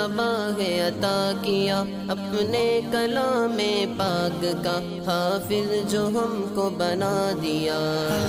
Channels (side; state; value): both; identical; correlation 1.00